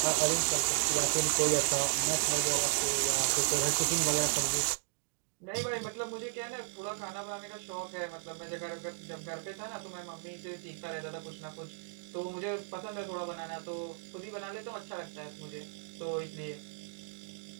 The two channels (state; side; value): silent; left; 55 dB below the other